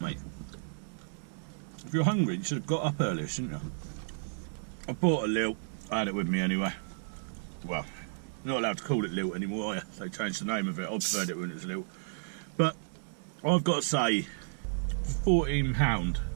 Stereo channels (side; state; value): left; silent; 56 dB below the other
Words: If you're hungry, you should have got up earlier, shouldn't you? I bought a lilt. I had it with me anyway. Well, you're not allowed to call it lilt anymore, are you? They changed the name of it. I preferred it when it was lilt. But I've got to say, for £14,